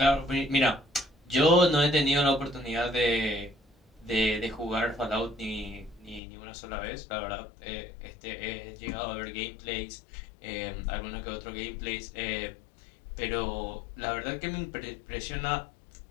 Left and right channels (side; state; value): right; drops out; at 6.2 s